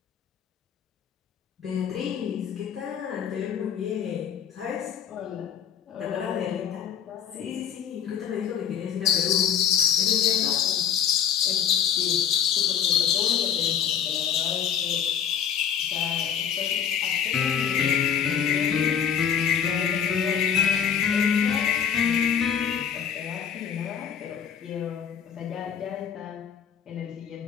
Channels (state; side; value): quieter; right; 8.4 dB